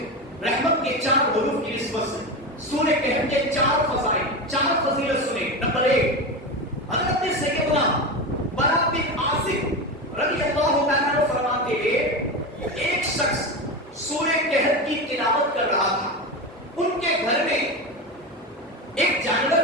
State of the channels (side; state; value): both; normal; correlation 0.20